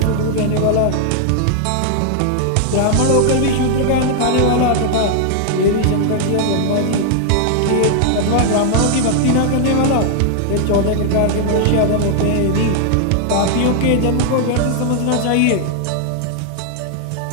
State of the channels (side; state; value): both; different; correlation 0.00